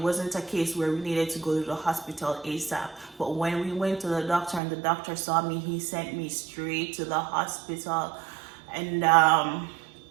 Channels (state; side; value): drops out; left; at 4.6 s